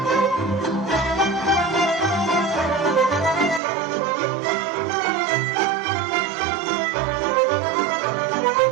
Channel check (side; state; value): left; drops out; at 3.6 s